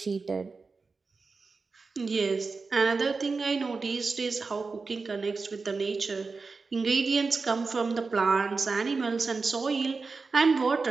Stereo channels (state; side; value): quieter; left; 4.3 dB